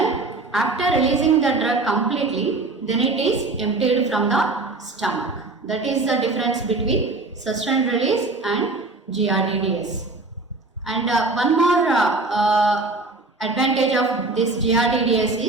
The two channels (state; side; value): quieter; left; 3.3 dB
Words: after releasing the drug completely, then it is emptied from the stomach. That is the difference between sustained release and GRDDS. And one more advantage of this GRDDS